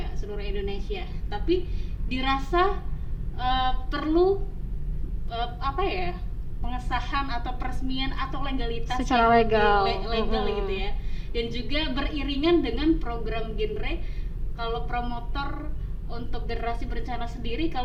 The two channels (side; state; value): both; identical; correlation 1.00